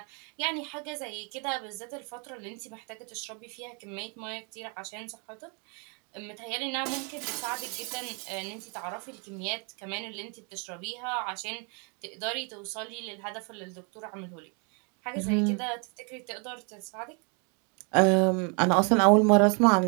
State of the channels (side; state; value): left; quieter; 35.9 dB